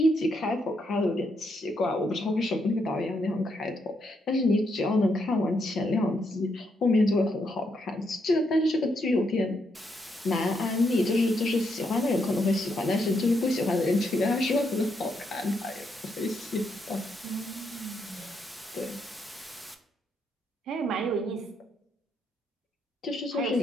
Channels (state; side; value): normal; both; correlation 0.78